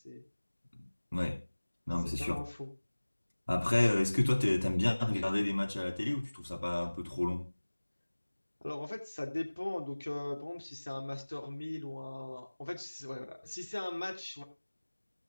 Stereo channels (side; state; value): both; inverted; correlation -1.00